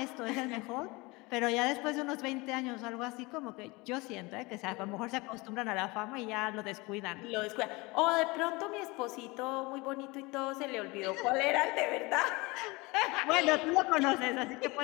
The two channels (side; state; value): right; quieter; 24.3 dB